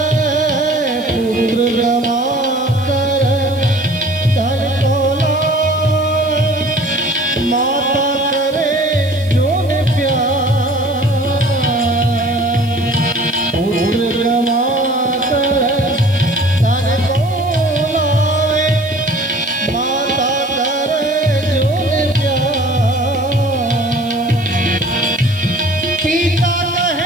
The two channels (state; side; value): noise; right; hiss, 24 dB below the sound